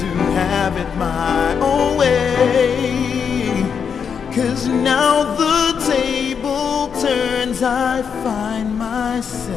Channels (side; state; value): right; quieter; 6.8 dB